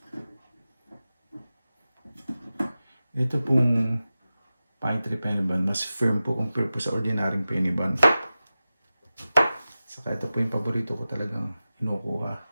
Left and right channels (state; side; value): inverted; both; correlation -0.95